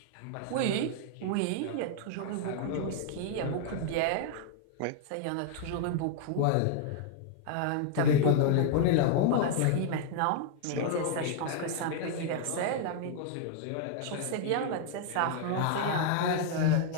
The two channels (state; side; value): different; both; correlation 0.00